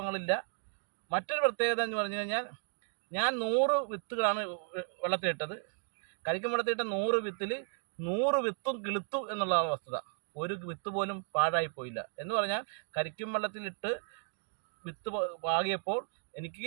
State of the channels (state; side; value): silent; left; 55 dB below the other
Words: മറ്റൊരു പ്രത്യേകത എന്ന് പറഞ്ഞു കഴിഞ്ഞാൽ, ഞാൻ 100 വിത്തുകളാണ് വെള്ളത്തിലിട്ടത്. കരിക്കും വെള്ളത്തിലിട്ട 100 വിത്തിൽ 100 വിത്തും കിളുത്തു എന്നുള്ളതാണ് വസ്തുത. ഒരു വിത്ത് പോലും പാഴായിപ്പോയില്ല. എന്ന് പറഞ്ഞാൽ കരിക്കും വെള്ളത്തിലിട്ട് വിത്ത് പാകിയപ്പോൾ